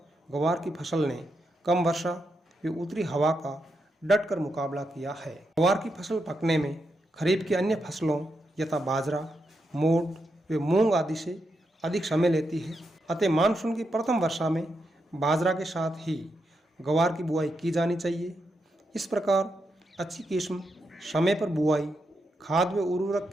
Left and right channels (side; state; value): both; normal; correlation 0.84